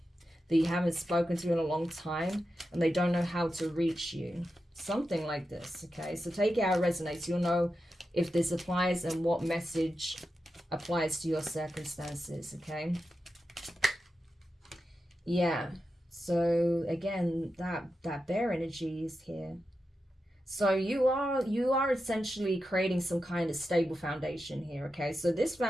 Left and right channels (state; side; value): normal; both; correlation 0.90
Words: That you haven't spoken to in a long time and they don't know how to reach you. Something like this, okay? So take it how it resonates. You'll know if this applies and what message applies to your circumstances, okay? Yeah. So again, that bear energy is here. So you are essentially creating some kind of stable foundation here, okay? So this